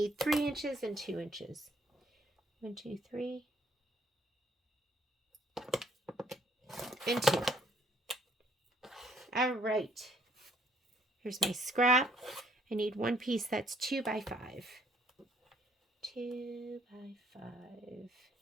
3 inches and 2 inches. 1, 2, 3. And 2. All right. Here's my scrap. I need one piece that's 2 by 5. 2 by 5.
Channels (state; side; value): normal; both; correlation 0.65